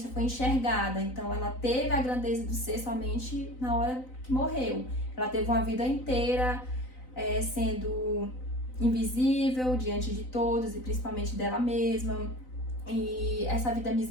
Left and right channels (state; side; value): late; right; 3.9 ms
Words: foi enxergada. Então ela teve a grandeza do ser somente na hora que morreu. Ela teve uma vida inteira sendo invisível diante de todos e principalmente dela mesma. E essa vida